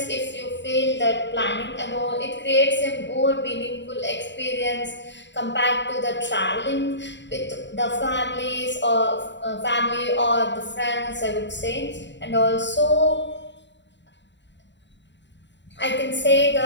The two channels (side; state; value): right; late; 0.52 ms